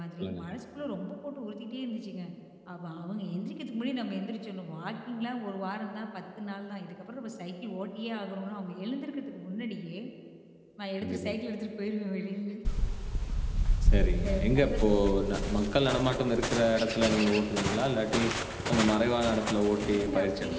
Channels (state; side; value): identical; both; correlation 1.00